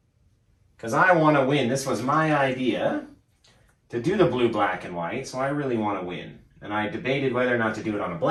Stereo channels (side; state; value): both; identical; correlation 1.00